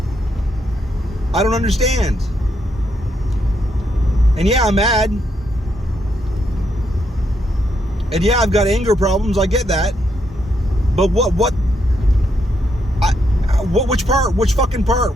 I don't understand. And yeah, I'm mad. And yeah, I've got anger problems. I get that. But which part? Which fucking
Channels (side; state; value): both; normal; correlation 0.78